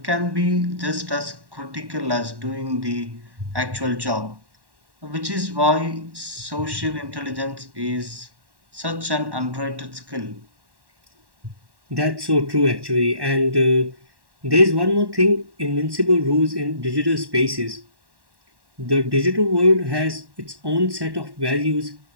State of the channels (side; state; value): left; late; 1.1 ms